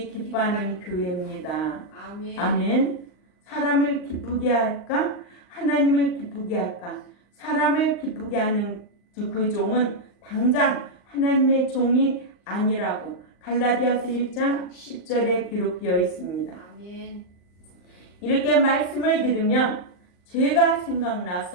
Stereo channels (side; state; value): right; late; 39 ms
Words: 기뻐하는 교회입니다. 아멘. 아멘. 사람을 기쁘게 할까? 하나님을 기쁘게 할까? 사람을 기쁘게 하는 그 종은 당장 하나님의 종이 아니라고 갈라디아서 1장 10절에 기록되어 있습니다. 아멘. 이렇게 말씀을 들으면 죄가